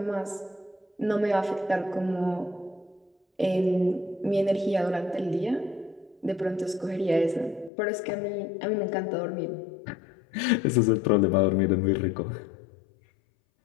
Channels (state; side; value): drops out; right; at 7.7 s